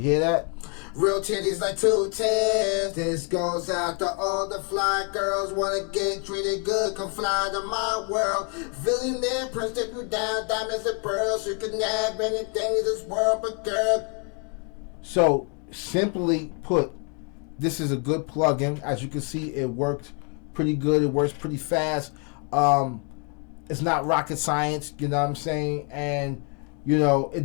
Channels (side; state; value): right; quieter; 37.9 dB